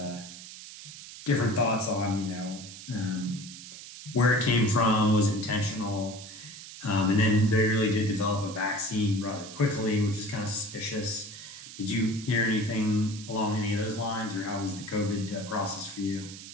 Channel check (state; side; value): noise; right; hiss, 14 dB below the sound